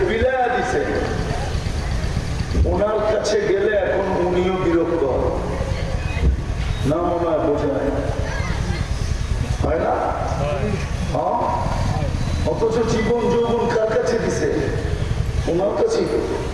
বিলায়া দিছে, ওনার কাছে গেলে এখন উনিও বিরক্ত না, মনে হয় বোঝা হয় না? হ্যাঁ, অথচ জীবন যৌবন কার কাছে দিছে? ওনার কাছেই।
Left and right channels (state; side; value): identical; both; correlation 1.00